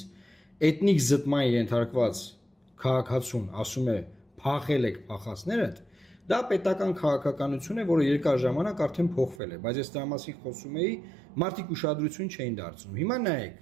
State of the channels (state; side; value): drops out; left; at 9.4 s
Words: էթնիկ զտման ենթարկված քաղաքացուն ասում է փախել եք փախածներդ, դա պետական քաղաքականություն է, որը երկար ժամանակ արդեն փոխվել է, բայց ես դրա մասին խոսում էի, մարդիկ ուշադրություն չէին դարձնում։ Հիմա